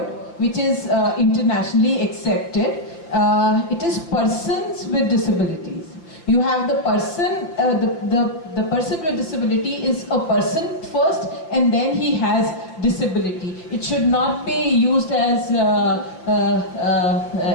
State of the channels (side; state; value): right; late; 5.9 ms